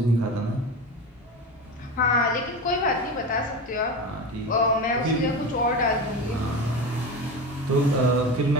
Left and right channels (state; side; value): normal; both; correlation 0.25